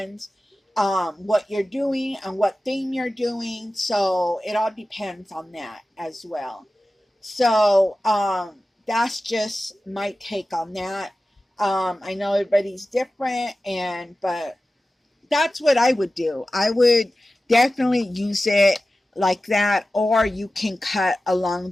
what you're doing and what theme you're doing. So it all depends on that as well. So that's just my take on that. I know everybody's different, but that's what I would do. I would definitely use it like that, or you can cut along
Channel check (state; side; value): normal; both; correlation 0.95